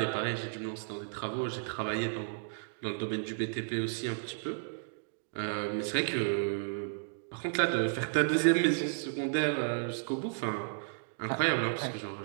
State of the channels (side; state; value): left; silent; digital silence